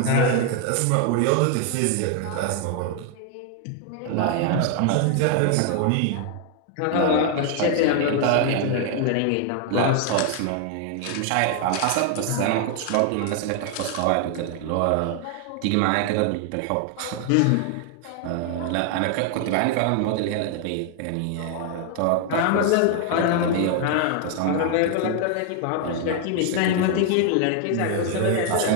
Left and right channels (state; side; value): different; both; correlation 0.00